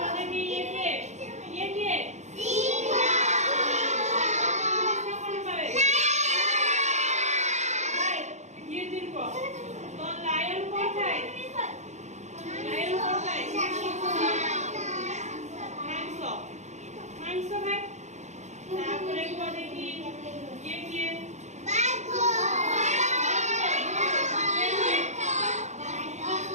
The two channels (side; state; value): left; late; 0.33 ms